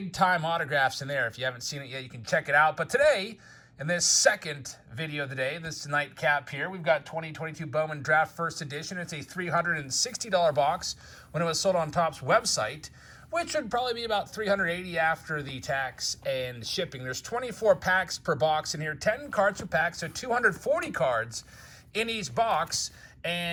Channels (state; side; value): identical; both; correlation 1.00